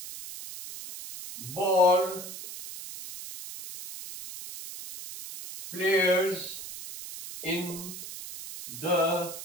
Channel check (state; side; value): noise; right; hiss, 11 dB below the sound